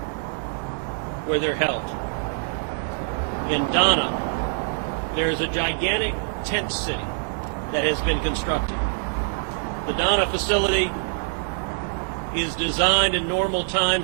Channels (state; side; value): silent; left; 62 dB below the other